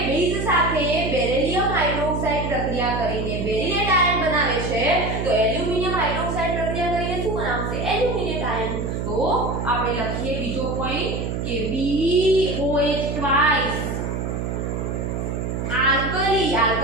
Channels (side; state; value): right; noise; hum, 2 dB below the sound